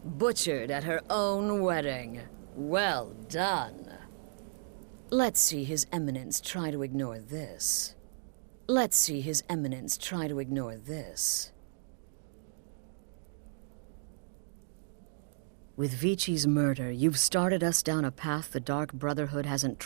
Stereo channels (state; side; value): silent; left; digital silence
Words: butchered at her own wedding. Well done. Let's see His Eminence try to ignore this. Let's see His Eminence try to ignore this. With Vici's murder, you've started us down a path the Dark Brotherhood hasn't